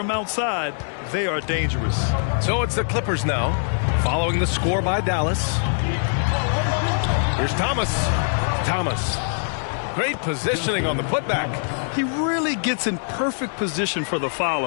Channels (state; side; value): silent; right; digital silence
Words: outside, they are dangerous. So it's the Clippers now, following the score by Dallas. Here's Thomas. Thomas. Great positioning on the putback. He really gets in perfect position for the